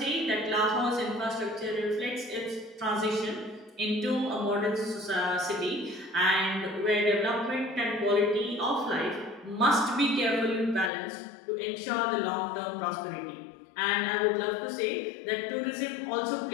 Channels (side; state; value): right; drops out; at 10.9 s